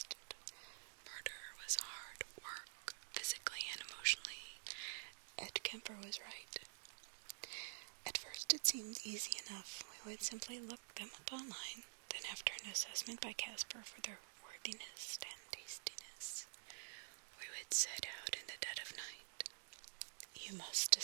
Murder was hard work, physically and emotionally. Ed Kemper was right. At first it seemed easy enough. We would simply look them up online, then after an assessment by Casper for their worthiness and tastiness, we would set out in the dead of night. You must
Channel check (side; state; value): left; silent; digital silence